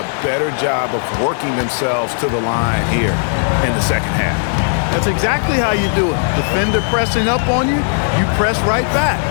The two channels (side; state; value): right; silent; 63 dB below the other